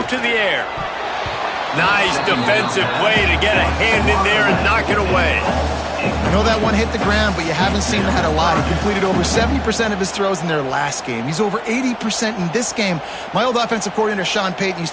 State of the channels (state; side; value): identical; both; correlation 1.00